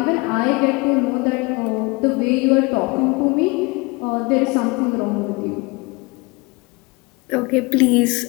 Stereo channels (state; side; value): quieter; right; 26.4 dB